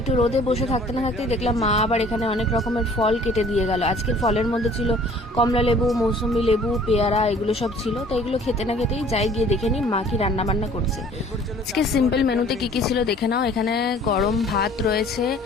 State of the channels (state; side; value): normal; both; correlation 0.52